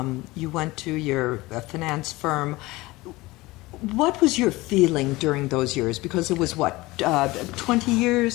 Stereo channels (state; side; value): quieter; right; 20.5 dB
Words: your finance firm. What was your feeling during those years? Because it was 20